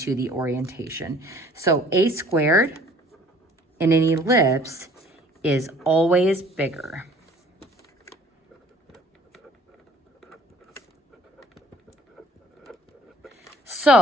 the orientation. So a squared in an ellipse is always bigger.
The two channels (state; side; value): normal; both; correlation 0.54